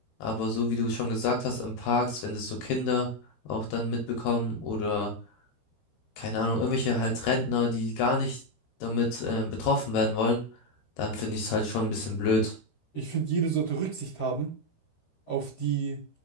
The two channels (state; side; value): late; right; 13 ms